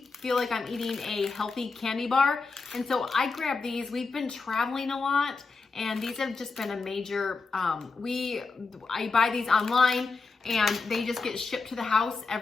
feel like I'm eating a healthy candy bar. And so I grab these. We've been traveling a lot, and these have just been a major, I buy these online, and they just get shipped to the house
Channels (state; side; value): quieter; right; 4.3 dB